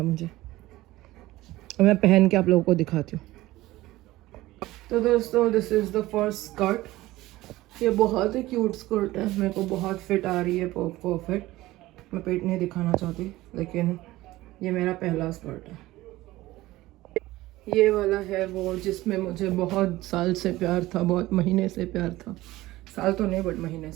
मुझे। और मैं पहन के आप लोगों को दिखाती हूँ। तो दोस्तों, this is the first skirt. ये बहुत ही क्यूट स्कर्ट है, मेरे को बहुत फिट आ रही है, परफेक्ट। मैं पेट नहीं दिखाना चाहती, लेकिन ये मेरा पहला स्कर्ट है। ये वाला है वो जिसमें मुझे बहुत साल से प्यार था, बहुत महीने से प्यार था, साल तो नहीं बट महीने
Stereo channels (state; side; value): quieter; left; 17.6 dB